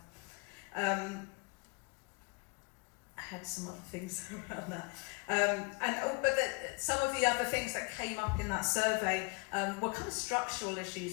I had some other things around that. Some of the other things that came up in that survey were kind of structural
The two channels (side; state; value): right; quieter; 31.4 dB